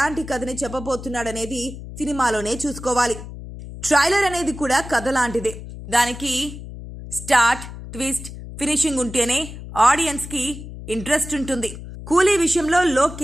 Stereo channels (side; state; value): left; noise; hum, 12 dB below the sound